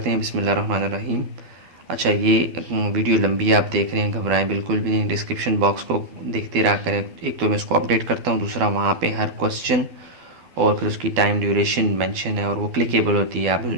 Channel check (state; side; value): late; left; 12 ms